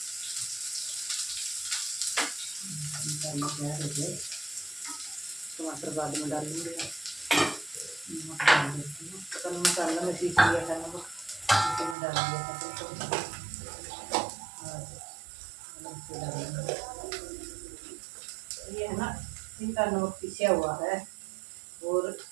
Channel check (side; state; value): left; drops out; at 12.0 s